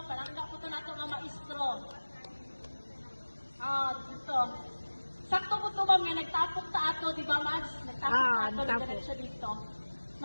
Palangga po ito na ito nga maestro. Dito. Sakto po ito, ma'am, nga nagtapok ta ato, di ba, Mads? Nagtapok ta ato, nagdarat siya dito.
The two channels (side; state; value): both; inverted; correlation -1.00